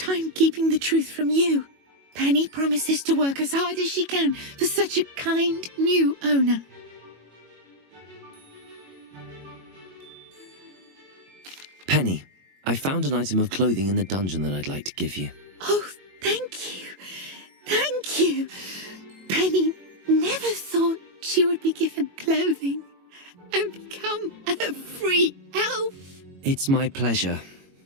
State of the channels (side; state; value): left; late; 22 ms